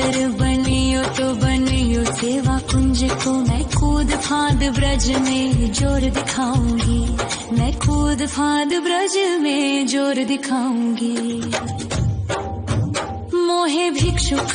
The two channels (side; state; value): both; identical; correlation 1.00